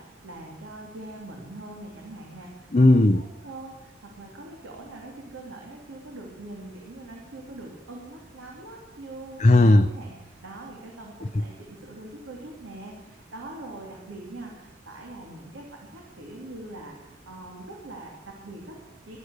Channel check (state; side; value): normal; both; correlation 0.87